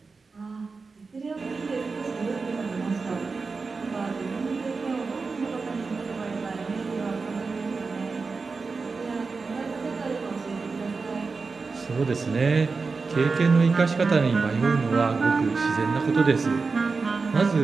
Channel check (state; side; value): quieter; left; 4.4 dB